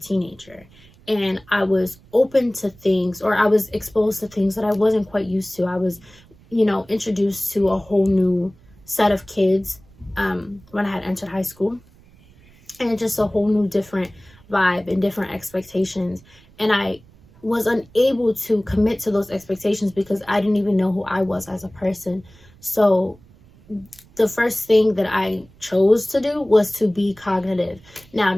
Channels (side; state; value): right; noise; rumble, 27 dB below the sound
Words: And I was open to things, or I was exposed to things that I wasn't quite used to. I was, you know, introduced to a whole new set of kids when I had entered high school. And just a whole new different vibe and different expectations. And I was unable to commit to those expectations because I didn't even know who I was as a person. So the first thing that I chose to do was to be cognitive. Now,